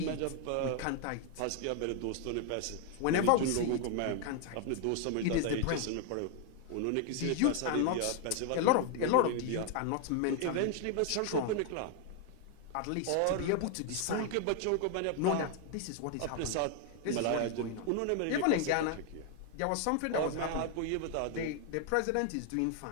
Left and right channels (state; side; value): different; both; correlation 0.00